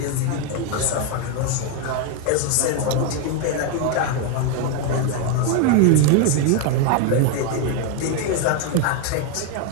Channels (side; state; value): both; different; correlation 0.01